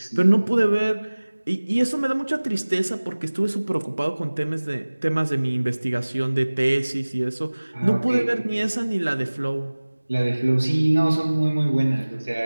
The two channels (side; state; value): both; inverted; correlation -1.00